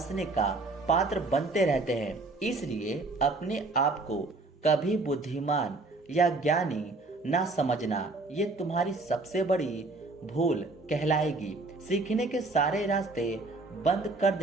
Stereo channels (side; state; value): left; quieter; 3.3 dB